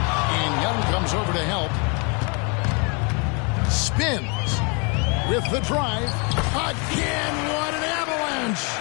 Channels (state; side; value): quieter; right; 33.5 dB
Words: And Young comes over to help. Spins with the drive. Again, what an avalanche.